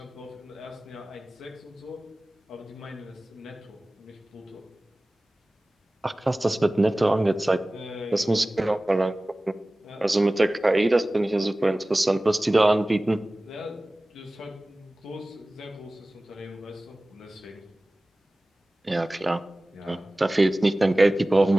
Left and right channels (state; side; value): normal; both; correlation 0.98